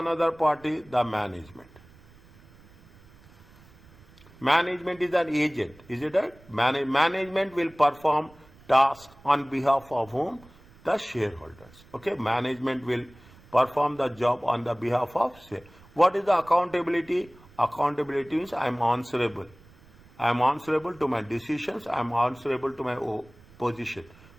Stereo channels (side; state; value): right; noise; rumble, 25 dB below the sound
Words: party? The management. Management is an agent. Is it right? Management will perform tasks on behalf of whom? The shareholders. Okay, management will perform the job on the behalf of shareholders. What is the accountability? Accountability means I am answerable. I am answerable to my decisions. I am answerable to my position.